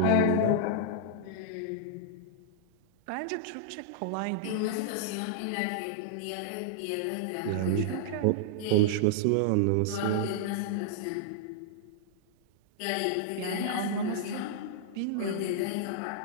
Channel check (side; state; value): both; different; correlation -0.01